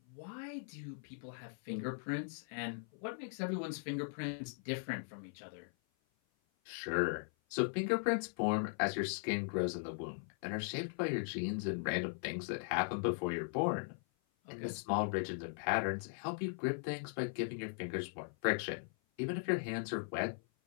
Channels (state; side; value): silent; right; 52 dB below the other